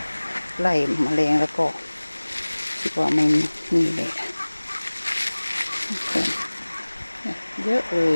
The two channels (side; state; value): both; inverted; correlation -1.00